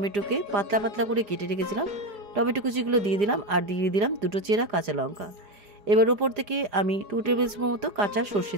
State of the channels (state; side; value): late; left; 4.9 ms